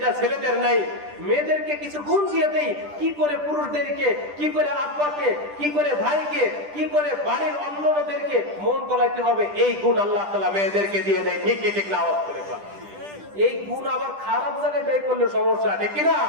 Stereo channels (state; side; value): late; left; 10 ms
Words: ছেলেদের নাই। মেয়েদেরকে কিছু গুণ দিয়ে দেয়, কি করে পুরুষদেরকে, কি করে আব্বাকে, কি করে ভাইকে, কি করে বাড়ির অন্যদেরকে মন গলাইতে হবে, এই গুণ আল্লাহ তাআলা মেয়েদেরকে দিয়ে দেয়। ঠিক কি ঠিক না? আওয়াজ করে বল। এই গুণ আবার খারাপ জায়গায় ব্যয় করলে সমস্যা, ঠিক কিনা?